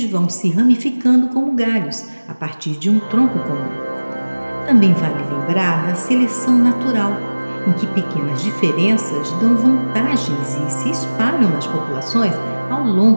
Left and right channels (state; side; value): inverted; both; correlation -1.00